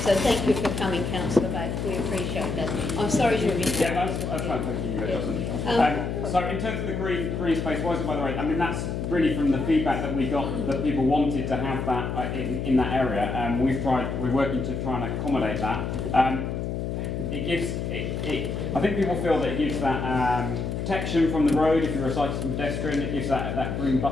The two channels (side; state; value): left; noise; hum, 3 dB below the sound